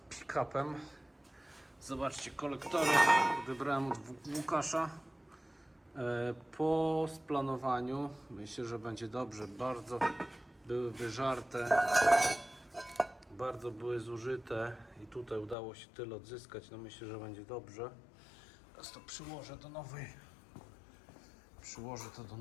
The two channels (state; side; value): drops out; right; at 15.6 s